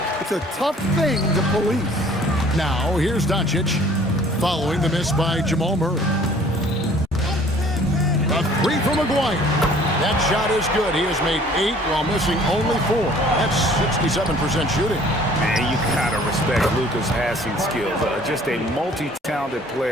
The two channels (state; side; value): normal; both; correlation 0.53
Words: It's a tough thing to police. Now, here's Doncic. following the miss by Jamal Murray. A three from Maguire. That shot is good. He has made 8 while missing only 4. That's 67% shooting. And you gotta respect Luka's passing skills. Just a multi-talented